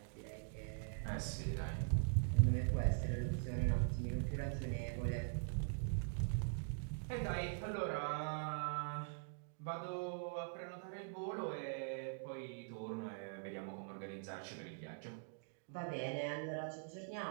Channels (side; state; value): left; silent; digital silence